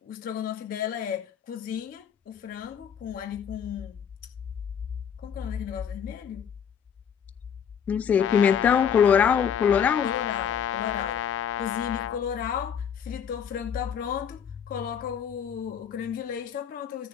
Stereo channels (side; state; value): right; quieter; 7.9 dB